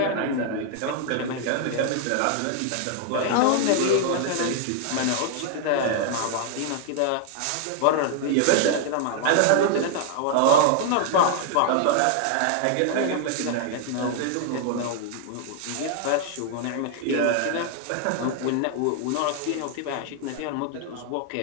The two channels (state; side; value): different; both; correlation 0.00